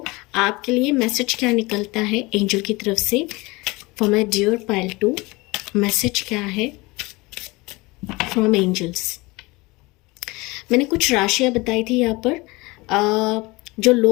आपके लिए मैसेज क्या निकलता है एंजल की तरफ से for my dear pile 2। Message क्या है फ्रॉम एंजल्स। मैंने कुछ राशियाँ बताई थी यहाँ पर, जो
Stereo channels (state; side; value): quieter; right; 23.5 dB